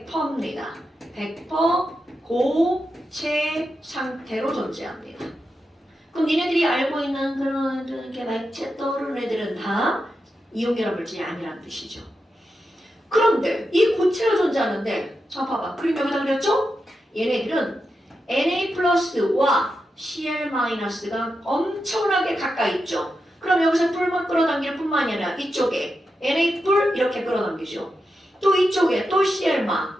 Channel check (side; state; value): both; normal; correlation 0.88